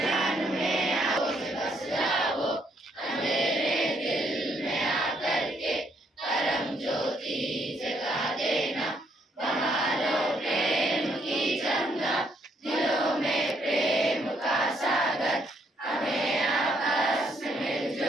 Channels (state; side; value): normal; both; correlation 0.72